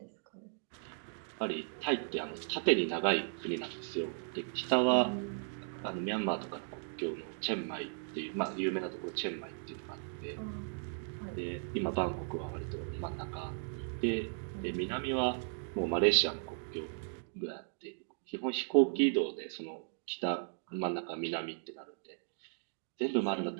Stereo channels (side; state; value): left; silent; digital silence